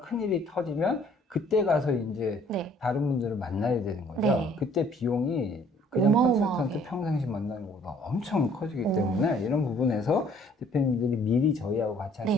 터지면 그때 가서 이제 네. 다른 분들을 만나야 되는 거죠. 네. 그때 비용이 그냥 어마어마하게. 컨설턴트 평상시 만나는 것보다 엄청 커지기 때문에 이런 부분에서 대표님들이 미리 저희하고 같이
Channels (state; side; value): normal; both; correlation 0.59